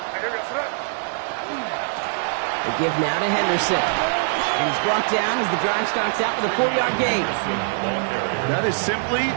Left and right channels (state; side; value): silent; left; digital silence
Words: The give now to Henderson. And he's brought down as the drive starts out with a 4-yard gain. That is simply